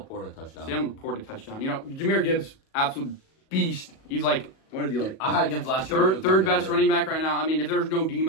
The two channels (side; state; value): right; late; 37 ms